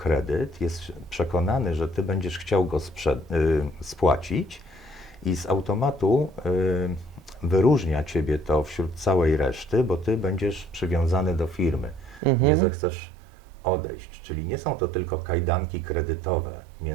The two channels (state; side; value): drops out; left; at 12.2 s